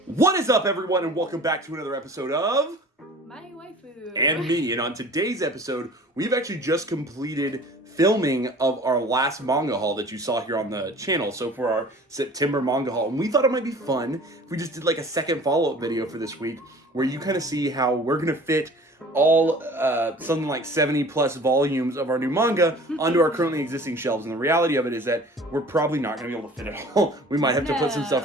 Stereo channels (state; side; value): normal; both; correlation 0.45